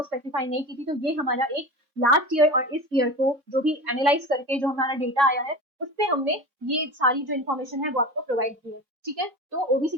स्पेसिफाई नहीं की थी। तो ये हमारा एक लास्ट ईयर और इस ईयर को जो भी एनालाइज करके जो हमारा डेटा आया है उससे हमने ये सारी जो इन्फॉर्मेशन है वो आपको प्रोवाइड की है। ठीक है, तो ओबीसी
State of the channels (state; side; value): late; left; 3.6 ms